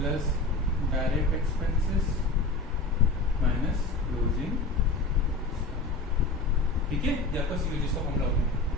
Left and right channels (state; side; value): quieter; right; 3.3 dB